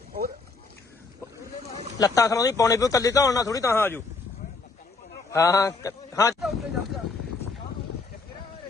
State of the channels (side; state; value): right; quieter; 4.0 dB